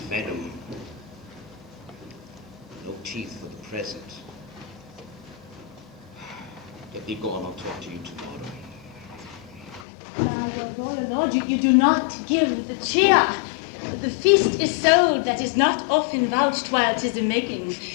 venom. teeth for the present. Let me go on, I'll talk to you tomorrow. Royal Lord, you do not give the cheer. The feast is so that is not often vouched while 'tis a making.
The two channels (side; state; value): right; drops out; at 9.9 s